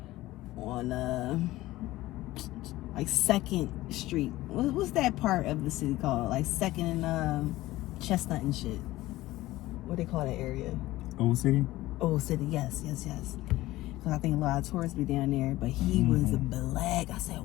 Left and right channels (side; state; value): right; quieter; 17.1 dB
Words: on like 2nd Street. What's that part of the city called? Like 2nd and Chestnut and shit. What they call that area? Old City? Old City, yes. Because I think a lot of tourists be down there. But he was black. I said,